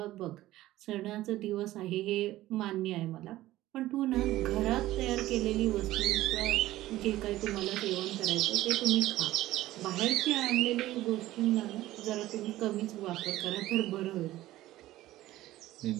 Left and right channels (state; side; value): quieter; left; 15.8 dB